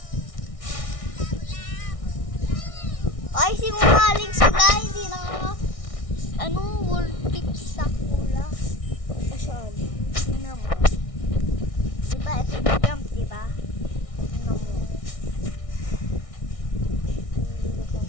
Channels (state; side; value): late; right; 1.6 ms